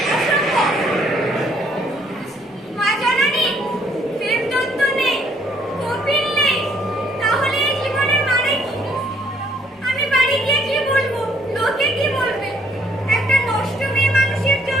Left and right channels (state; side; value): normal; both; correlation 0.66